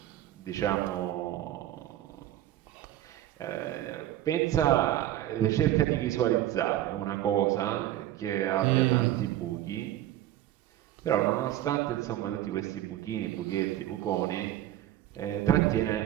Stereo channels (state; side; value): quieter; left; 13.5 dB